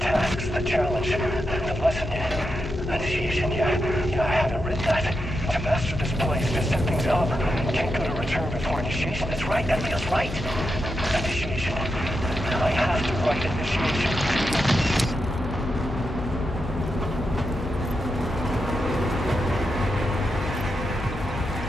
the challenge, the lesson, initiation. Yeah, I haven't written that. To master this place, to set things up. Can't go to return before initiation. That's right. That feels right. Initiation. I have to write initiation.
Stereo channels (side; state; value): left; noise; hum, 10 dB below the sound